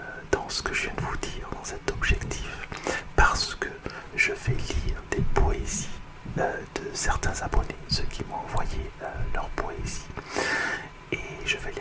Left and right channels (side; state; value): both; identical; correlation 1.00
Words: dans ce que je viens de vous dire, dans cet objectif, parce que je vais lire des poésies de certains abonnés, ceux qui m'ont envoyé leur poésie, et je vais